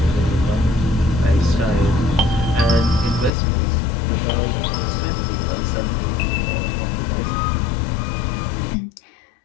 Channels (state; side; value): drops out; right; at 3.3 s